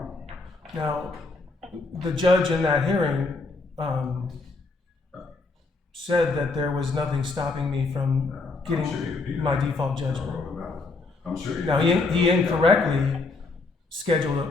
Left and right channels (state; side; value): quieter; right; 3.7 dB